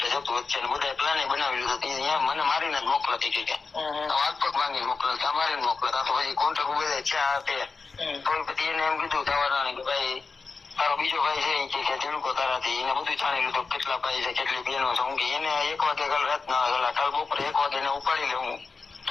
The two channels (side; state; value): right; quieter; 4.5 dB